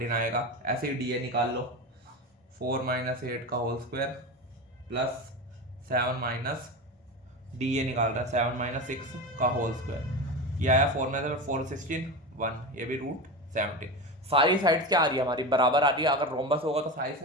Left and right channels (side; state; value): both; normal; correlation 0.23